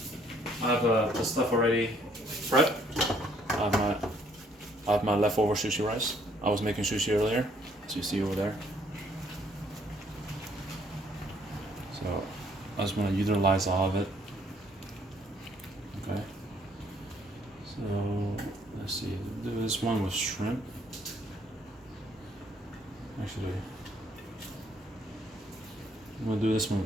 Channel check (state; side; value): normal; both; correlation 0.65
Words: I have the stuff already prepped. I have my leftover sushi rice. I was making sushi earlier, as you see over there. So I just want to utilize all of it. Okay. So let's see. Do this one with shrimp. Actually, I'm gonna do this one